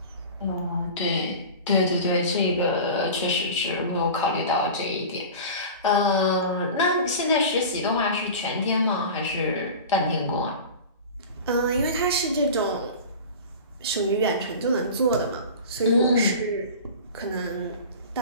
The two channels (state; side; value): inverted; both; correlation -0.34